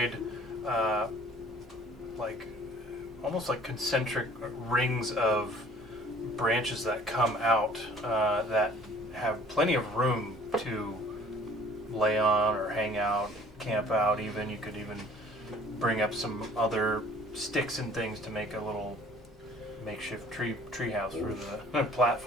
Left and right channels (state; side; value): normal; both; correlation 0.52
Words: like almost like concentric rings of branches that come out that have plenty of room to lay on or hang out, camp out even. You could even bring up some other sticks and things to make a little makeshift tree house for the